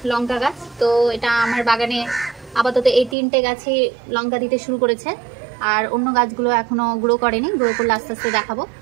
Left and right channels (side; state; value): left; drops out; at 3.2 s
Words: লঙ্কা গাছ। তো এটা আমার বাগানে আপাতত এই 3টে গাছই লঙ্কা দিতে শুরু করেছে, আর অন্য গাছগুলো এখনো গ্রো করেনি, গ্রো করলে আস্তে আস্তে দেখাবো।